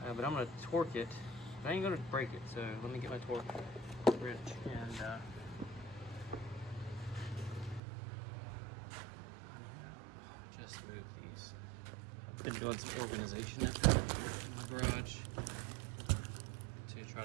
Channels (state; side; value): drops out; left; at 7.8 s